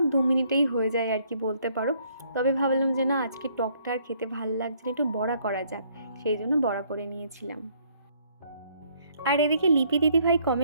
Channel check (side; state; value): both; inverted; correlation -0.66